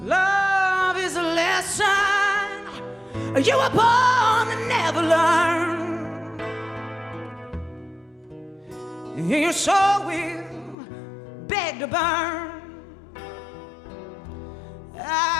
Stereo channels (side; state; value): right; drops out; at 10.8 s